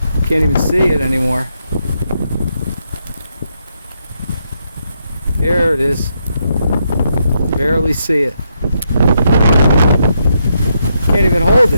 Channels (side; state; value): both; inverted; correlation -0.80